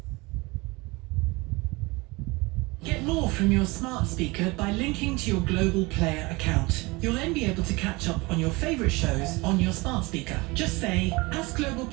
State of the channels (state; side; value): quieter; left; 24.2 dB